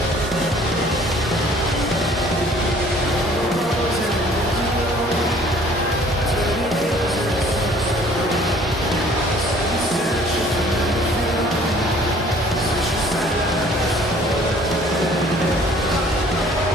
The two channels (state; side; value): normal; both; correlation 0.54